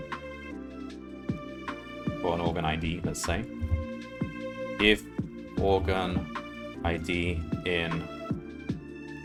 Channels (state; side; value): identical; both; correlation 1.00